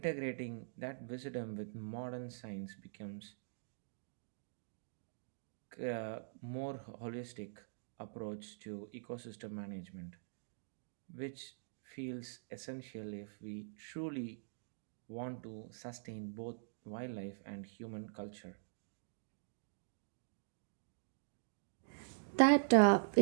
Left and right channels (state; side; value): silent; left; digital silence